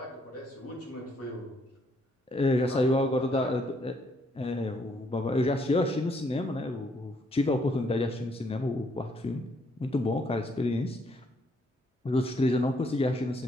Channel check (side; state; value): both; normal; correlation 0.71